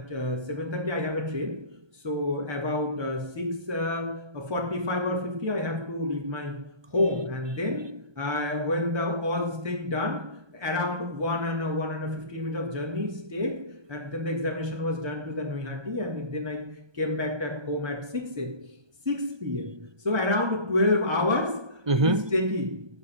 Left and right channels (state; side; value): late; left; 1.3 ms